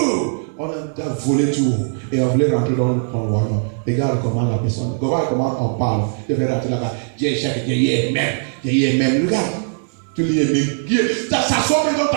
On a volé tout. Et on voulait rentrer dans le royaume. Regarde comment la personne, comment on parle. Je vais rentrer là-bas. Dieu est même. Regarde. Tu lis même. Ça sort même dans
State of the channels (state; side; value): silent; left; 59 dB below the other